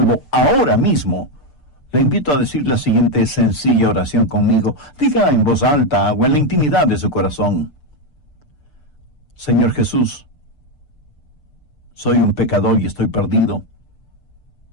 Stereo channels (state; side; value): late; right; 6.7 ms